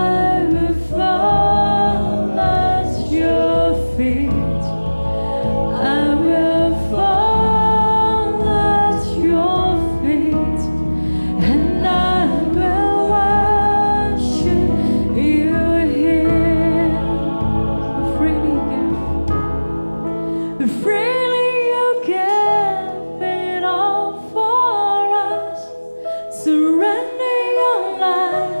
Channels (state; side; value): inverted; both; correlation -1.00